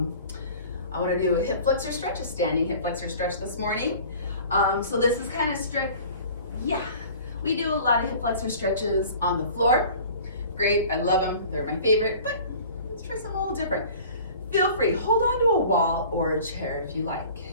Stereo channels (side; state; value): both; inverted; correlation -0.45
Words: want to do a hip flexor stretch, a standing hip flexor stretch this morning. So this is kind of strict. Yeah, we do a lot of hip flexor stretches on the floor. Great, I love them. They're my favorite, but let's try something a little different. Feel free, hold on to a wall or a chair if you like.